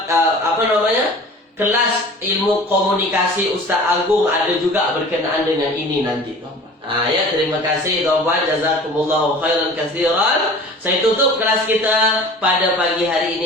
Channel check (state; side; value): normal; both; correlation 0.43